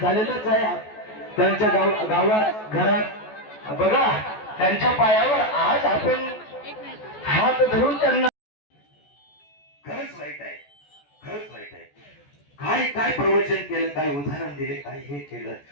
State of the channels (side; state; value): right; late; 14 ms